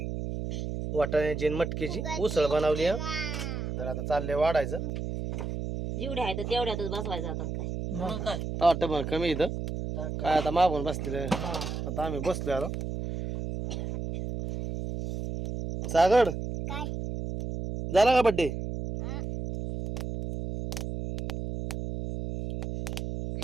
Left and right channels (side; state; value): right; noise; hum, 4 dB below the sound